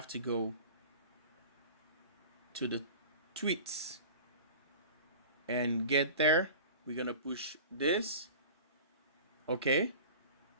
to go to the tweets and get there. We're gonna push this. Okay,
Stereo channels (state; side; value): inverted; both; correlation -0.38